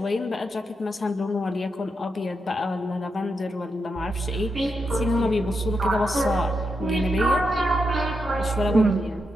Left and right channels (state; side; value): normal; both; correlation 0.85